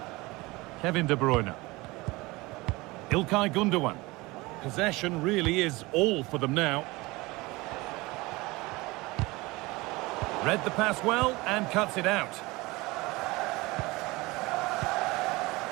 Kevin De Bruyne. Ilkay Gundogan. Possession really is all for them now. Read the pass well and cuts it out.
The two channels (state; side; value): quieter; left; 22.3 dB